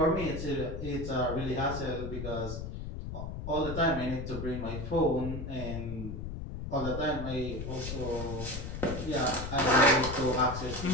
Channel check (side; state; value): left; noise; rumble, 6 dB below the sound